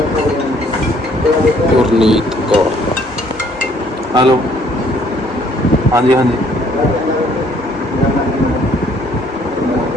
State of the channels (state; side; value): normal; both; correlation 0.62